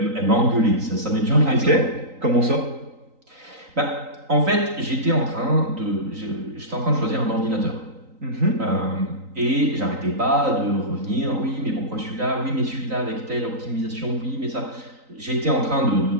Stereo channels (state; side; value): late; left; 3.9 ms